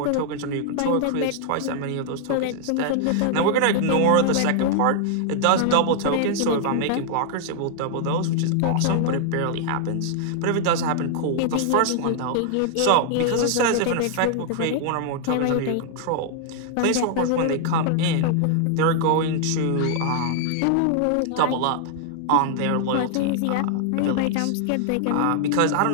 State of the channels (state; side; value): different; both; correlation 0.00